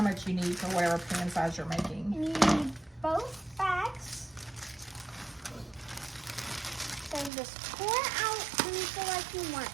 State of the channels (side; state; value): left; drops out; at 7.3 s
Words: much you need for whatever pan size you're making. And you need both bags. So just pour it out when you feel like you want